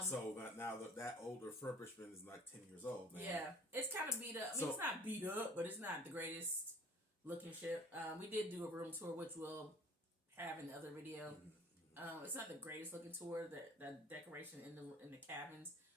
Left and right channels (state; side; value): normal; both; correlation 0.49